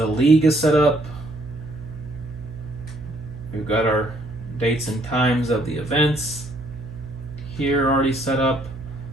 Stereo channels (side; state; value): right; noise; hum, 13 dB below the sound